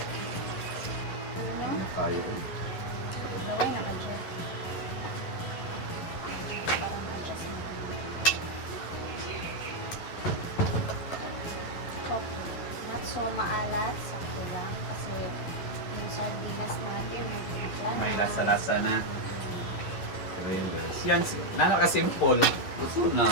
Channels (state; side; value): late; right; 11 ms